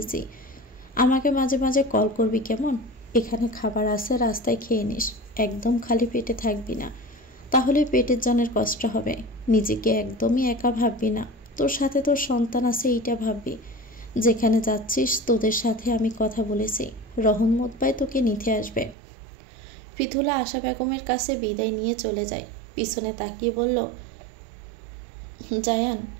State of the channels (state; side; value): drops out; left; at 18.9 s